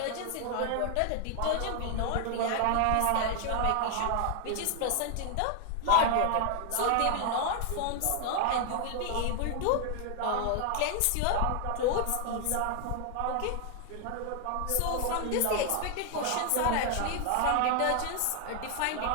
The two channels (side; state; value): both; different; correlation 0.00